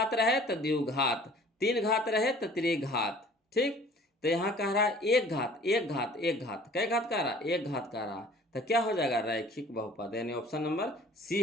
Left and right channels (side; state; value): both; normal; correlation 0.50